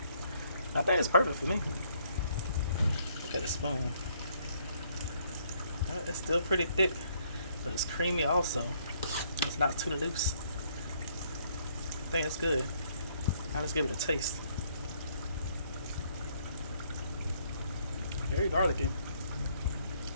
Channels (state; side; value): inverted; both; correlation -0.67